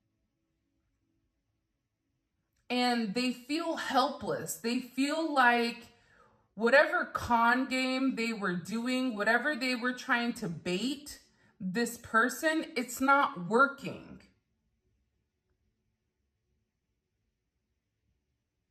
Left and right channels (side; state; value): both; identical; correlation 1.00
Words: And they feel helpless. They feel like whatever con game they were doing, whatever they were trying to bait this person, it's not working.